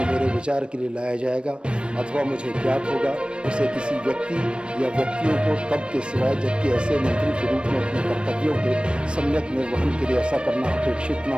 मेरे विचार के लिए लाया जाएगा अथवा मुझे ज्ञात होगा उसे किसी व्यक्ति या व्यक्तियों को तब के सिवाय जबकि ऐसे मंत्री के रूप में अपने कर्तव्यों के सम्यक निर्वहन के लिए ऐसा करना अपेक्षित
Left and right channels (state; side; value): late; left; 0.057 ms